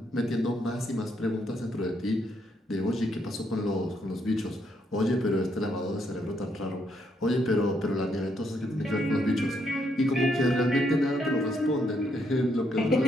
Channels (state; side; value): normal; both; correlation 0.75